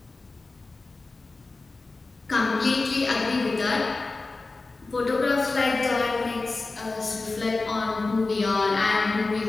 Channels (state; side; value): quieter; right; 3.6 dB